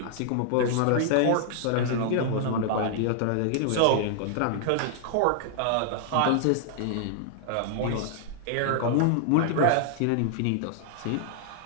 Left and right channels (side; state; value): both; different; correlation -0.01